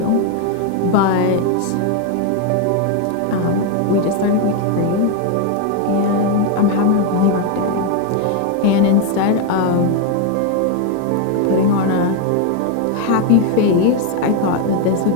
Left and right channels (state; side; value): different; both; correlation 0.01